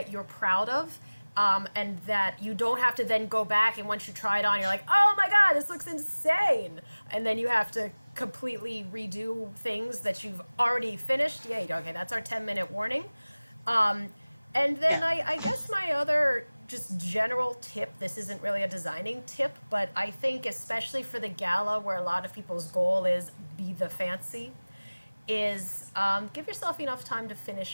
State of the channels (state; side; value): inverted; both; correlation -1.00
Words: you're proud of, and that you don't have to then go back and once you try it on, you're like, oh my god, this looks insane, and then you have to completely redo things that you've already finished. Yay, okay, that's our 10-minute warning. And then I guess my other just general tip, this isn't really a designing tip, but I think especially for the gala where a lot of people's goal is be the fancy, is give yourself enough time to